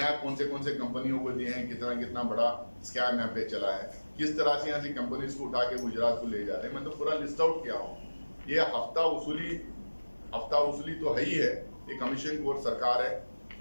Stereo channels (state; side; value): inverted; both; correlation -1.00